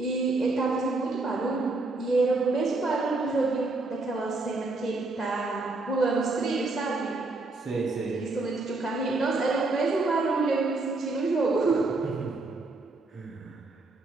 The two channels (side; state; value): left; quieter; 3.3 dB